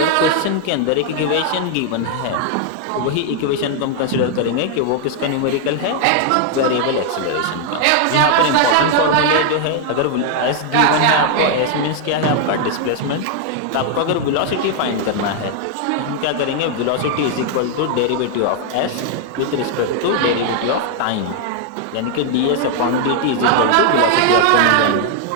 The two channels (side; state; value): both; different; correlation 0.00